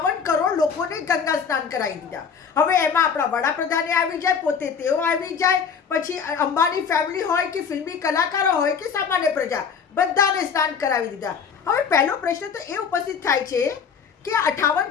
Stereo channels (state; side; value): quieter; right; 6.5 dB